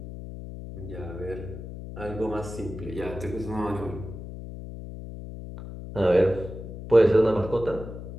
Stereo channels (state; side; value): noise; left; hum, 10 dB below the sound